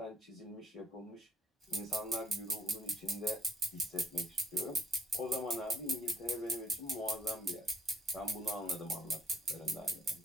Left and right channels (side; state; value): both; normal; correlation 0.60